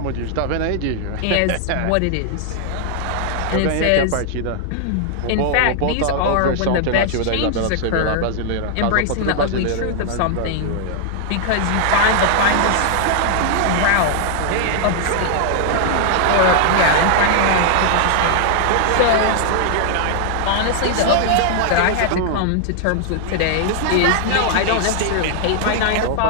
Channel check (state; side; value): different; both; correlation 0.00